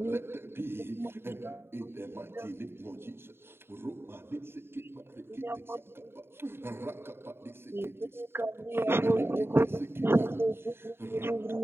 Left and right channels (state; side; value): late; left; 0.11 ms